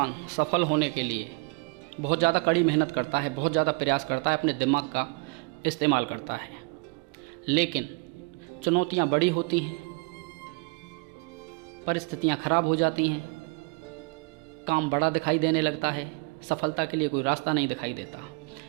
सफल होने के लिए बहुत ज़्यादा कड़ी मेहनत करता है, बहुत ज़्यादा प्रयास करता है, अपने दिमाग का इस्तेमाल करता है। लेकिन चुनौतियाँ बड़ी होती हैं, परिस्थितियाँ खराब हो जाती हैं, काम बड़ा दिखाई देने लगता है, सफलता के लिए कोई रास्ता नहीं दिखाई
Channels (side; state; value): left; quieter; 31.4 dB